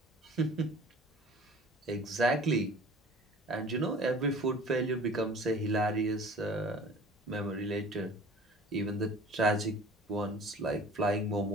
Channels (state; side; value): normal; both; correlation 0.46